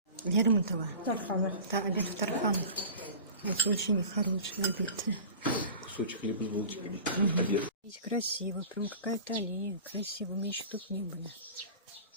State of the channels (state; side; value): inverted; both; correlation -0.37